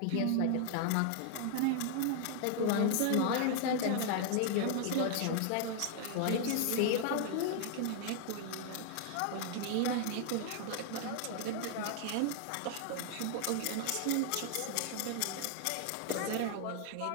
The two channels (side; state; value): both; different; correlation 0.00